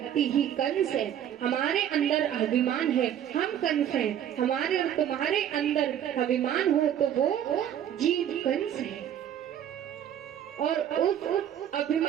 ही कंस है। हमारे अंदर अभिमान है, हम कंस हैं। हमारे और तुम्हारे अंदर अभिमान हो तो वो जीव कंस है। और उस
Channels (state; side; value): quieter; left; 10.2 dB